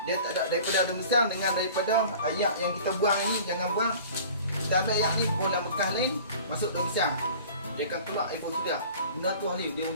Dia tak ada daripada daun pisang dengan daripada ayak yang kita buang ni, jangan buang. Kita ambil ayak ni buang dalam bekas lain, masuk daun pisang. Dia akan keluar infusora. Guna tu hari dia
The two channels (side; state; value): both; inverted; correlation -0.44